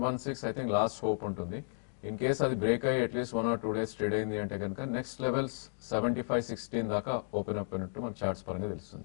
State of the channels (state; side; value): silent; right; digital silence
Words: I think last hope ఉంటుంది. ఇన్ కేస్ అది బ్రేక్ అయ్యి అట్లీస్ట్ 1 or 2 days ట్రేడ్ అయింది అంటే కనుక నెక్స్ట్ లెవెల్స్ 75-16 దాకా ఓపెన్ అప్ అయినట్టు మన చార్ట్స్ పరంగా